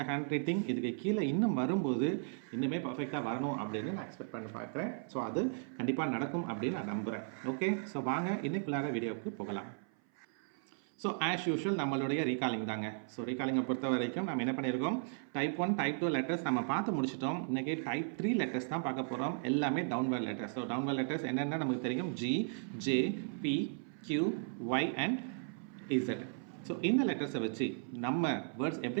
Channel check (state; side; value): silent; left; 54 dB below the other